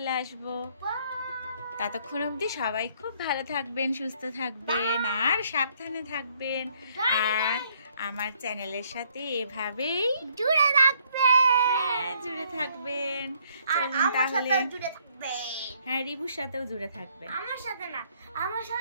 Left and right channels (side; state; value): both; inverted; correlation -0.66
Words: আসবো। ততক্ষণ অবধি সবাই খুব ভালো থাকবেন, সুস্থ থাকবেন আর সাবধানে থাকবেন। আর আমার চ্যানেলের সাথে এভাবেই জুড়ে থাকবেন। জুড়ে থাকবেন। আর আমার সাথেও জুড়ে থাকবেন। হ্যাঁ, রিবুর সাথেও জুড়ে থাকবেন। আমার সাথে না, আমার